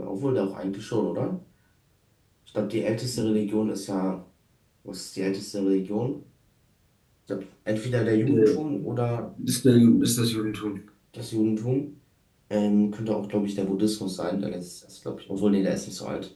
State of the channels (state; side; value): identical; both; correlation 1.00